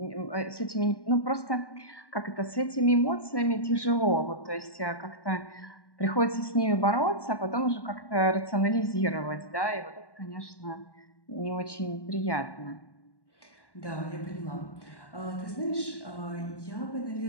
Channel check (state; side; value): late; right; 1.1 ms